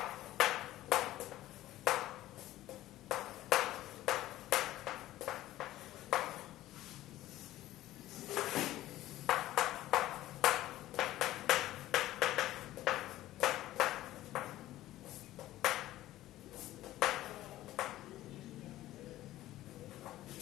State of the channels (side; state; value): right; quieter; 15.2 dB